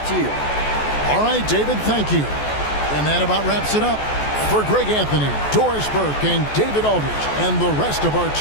to you. All right, David, thank you. And that about wraps it up. For Greg Anthony, Doris Burke, and David Aldridge, and the rest of our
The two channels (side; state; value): right; late; 14 ms